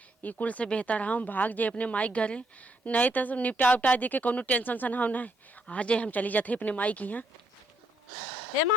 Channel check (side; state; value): both; normal; correlation 0.74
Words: ये कुल से बेहतर हम भाग जाए अपने माई घरे, नहीं तो निपटा उपटा दे के कोनो टेंशन सन हम नहीं आ जाए, हम चली जाते अपने माई की यहाँ। ए